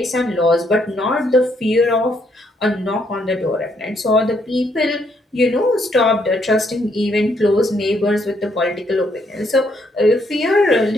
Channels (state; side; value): normal; both; correlation 0.72